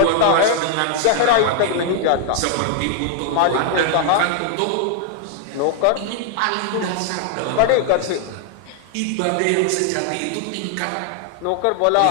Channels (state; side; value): different; both; correlation 0.00